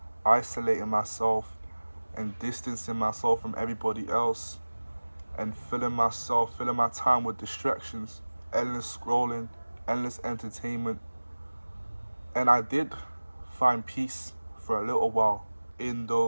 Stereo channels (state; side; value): inverted; both; correlation -1.00